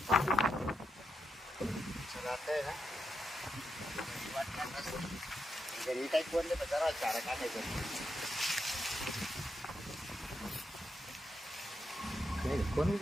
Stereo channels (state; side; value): normal; both; correlation 0.84